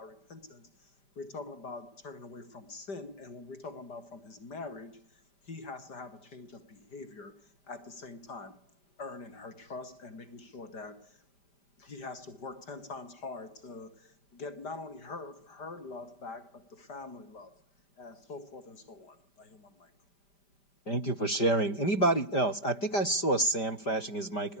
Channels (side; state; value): right; late; 5.1 ms